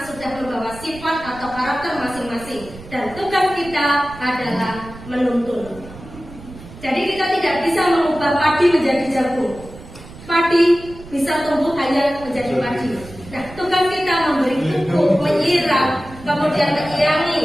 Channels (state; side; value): noise; right; rumble, 17 dB below the sound